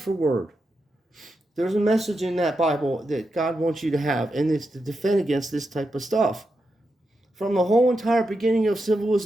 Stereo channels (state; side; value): normal; both; correlation 0.87